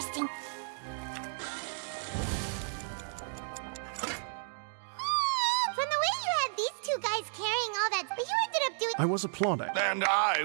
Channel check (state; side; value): silent; left; digital silence